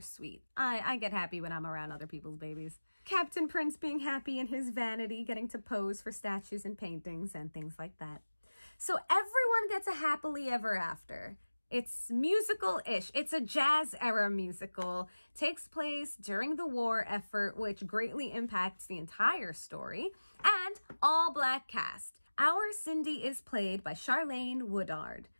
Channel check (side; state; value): both; inverted; correlation -1.00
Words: sweet. I get happy when I'm around other people's babies. Captain Prince being happy in his vanity, getting to pose for statues and paintings and things like that. So everyone gets a happily ever after. It's musical-ish. It's a jazz era musical. Takes place during the war effort, which greatly impacts the entire story. And all black cast. Our Cindy is played by Charlayne Woodard.